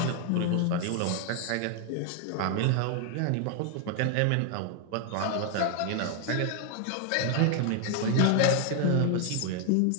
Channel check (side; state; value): both; different; correlation 0.00